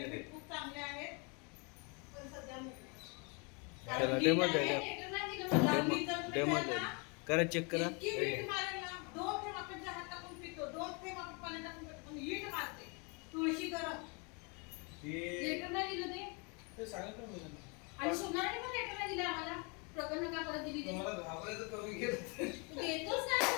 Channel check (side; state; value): right; quieter; 32.8 dB